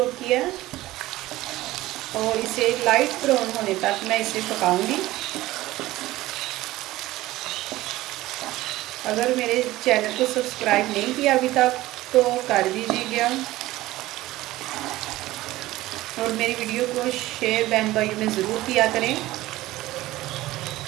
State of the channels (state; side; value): quieter; left; 17.1 dB